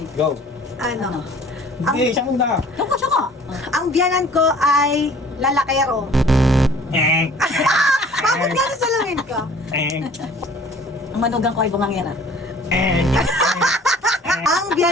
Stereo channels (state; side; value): normal; both; correlation 0.50